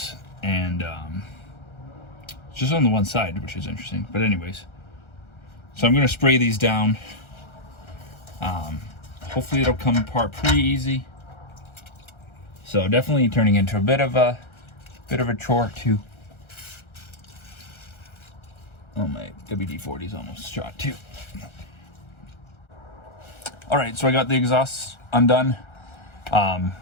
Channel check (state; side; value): late; right; 1.4 ms